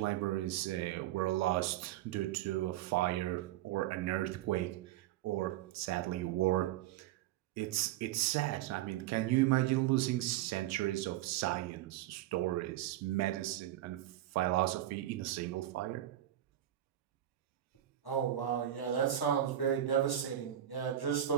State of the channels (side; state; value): left; quieter; 12.7 dB